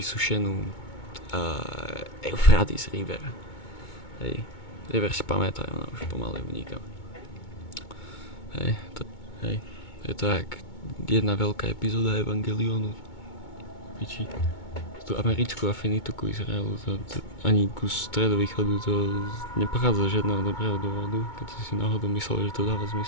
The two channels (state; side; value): late; right; 2.2 ms